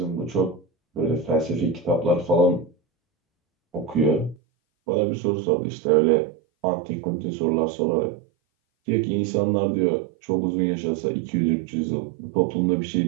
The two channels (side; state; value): left; drops out; at 4.4 s